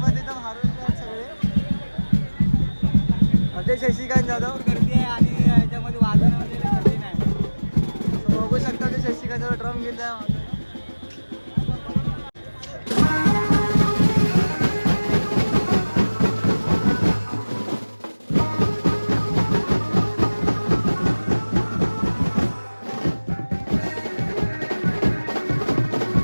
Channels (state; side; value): inverted; both; correlation -1.00